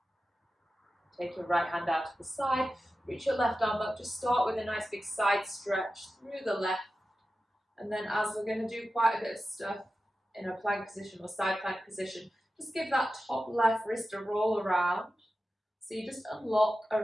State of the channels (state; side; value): normal; both; correlation 0.93